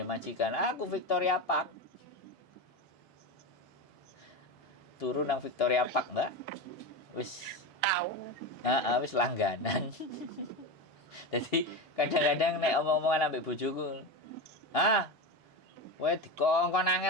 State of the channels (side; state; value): right; late; 1.7 ms